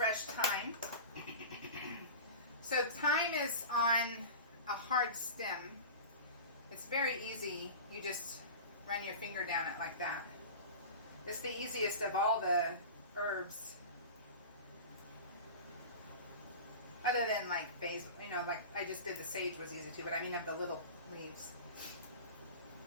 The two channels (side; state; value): both; inverted; correlation -0.33